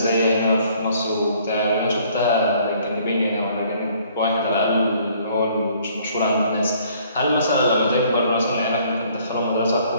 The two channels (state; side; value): inverted; both; correlation -0.60